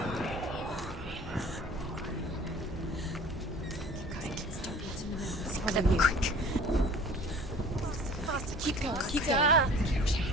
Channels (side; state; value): both; normal; correlation 0.46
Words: Quick. Faster, keep going, keep going.